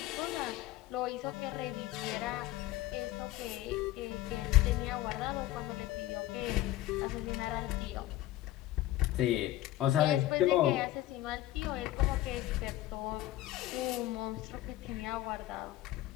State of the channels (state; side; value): quieter; right; 14.9 dB